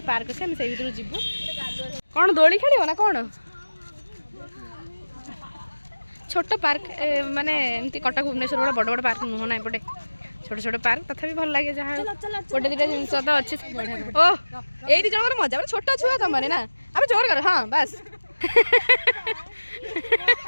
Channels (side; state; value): both; inverted; correlation -1.00